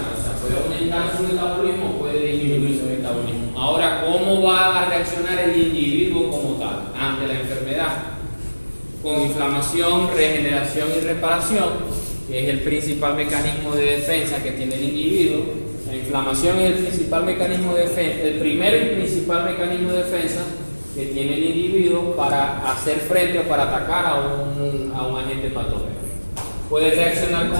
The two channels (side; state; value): both; inverted; correlation -1.00